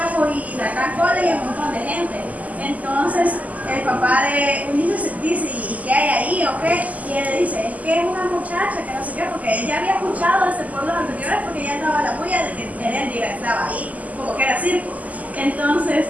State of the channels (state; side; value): late; left; 0.076 ms